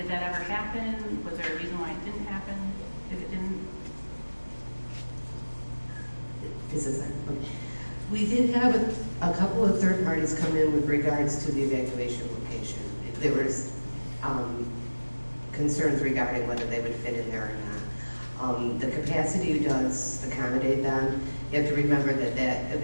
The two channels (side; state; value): both; inverted; correlation -1.00